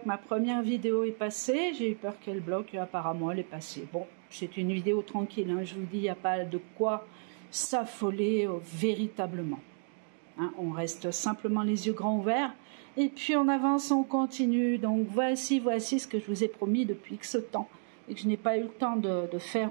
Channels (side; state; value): left; silent; 56 dB below the other